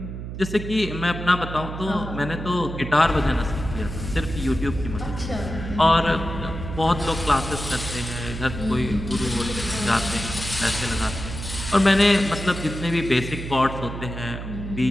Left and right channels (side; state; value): right; noise; hum, 8 dB below the sound